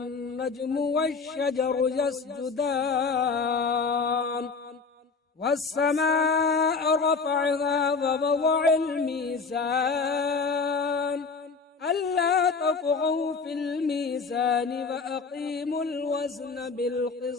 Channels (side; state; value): right; quieter; 4.7 dB